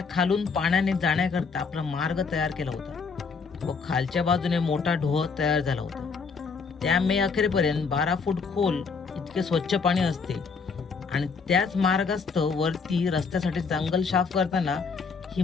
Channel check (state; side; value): quieter; right; 5.1 dB